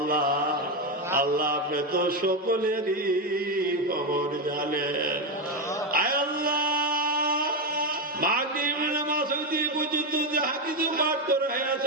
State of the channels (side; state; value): both; normal; correlation 0.09